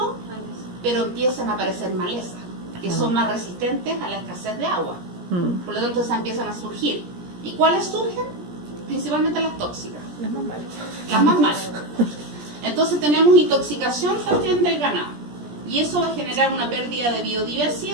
pero empiezan a aparecer malezas, que son más resistentes a la escasez de agua. Por lo tanto, esas empiezan a surgir. ¿Y cuáles surgen? Principalmente las tóxicas. Las más malas. Entonces tenemos intoxicación también del ganado. Y eso va a generar una pérdida de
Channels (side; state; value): left; late; 17 ms